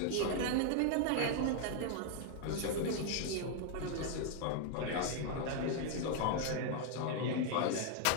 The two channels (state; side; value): different; both; correlation 0.00